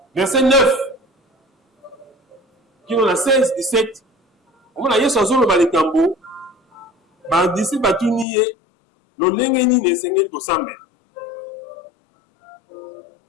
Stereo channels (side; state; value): right; drops out; at 8.2 s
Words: verset 9, qui on a 16, 17. On a dit chanson le balikambo, d'ici batuniye, le lengeni ne sengel ko sambe.